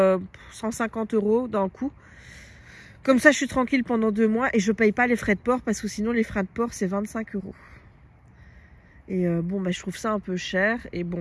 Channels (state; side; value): identical; both; correlation 1.00